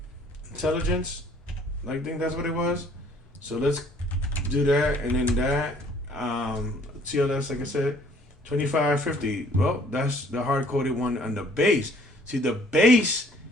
intelligence. I think that's what it was. So let's do that, and then that. TLS, like I said, 2550. Well, that's the hard coded one on the base. See, the base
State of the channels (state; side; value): normal; both; correlation 0.58